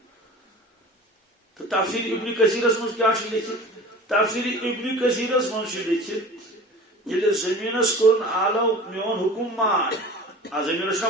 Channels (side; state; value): both; normal; correlation 0.39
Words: تو تفسیر ابن کثیرس من کیا لکھت تفسیر ابن کثیرس من لکھت یل زمینس کورن آلو میون حکم مان زمینس کا